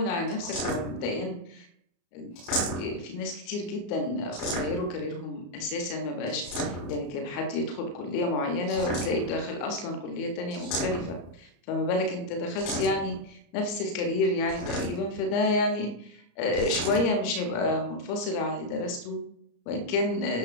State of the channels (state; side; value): late; right; 34 ms